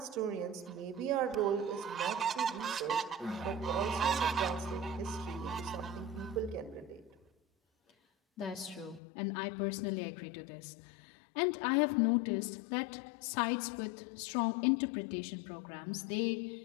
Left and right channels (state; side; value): drops out; right; at 9.0 s